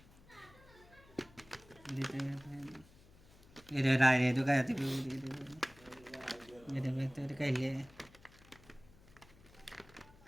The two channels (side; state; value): left; noise; hum, 24 dB below the sound